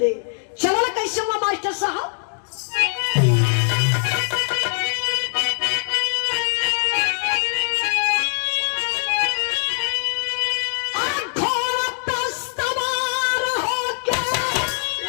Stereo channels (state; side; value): silent; right; digital silence